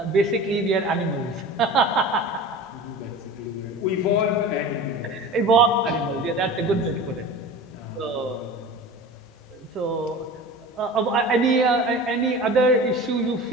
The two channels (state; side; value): normal; both; correlation 0.35